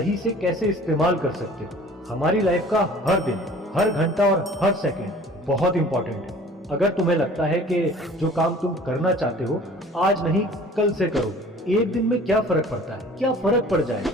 से कैसे इस्तेमाल कर सकते हो। हमारी लाइफ का हर दिन, हर घंटा और हर सेकंड बहुत इंपॉर्टेंट है। अगर तुम्हें लगता है कि जो काम तुम करना चाहते हो आज नहीं कल से करो, एक दिन में क्या फर्क पड़ता है, क्या फर्क पड़ जाए,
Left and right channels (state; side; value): normal; both; correlation 0.48